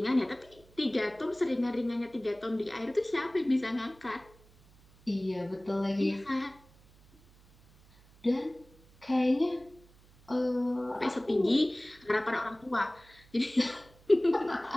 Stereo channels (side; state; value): right; noise; hum, 27 dB below the sound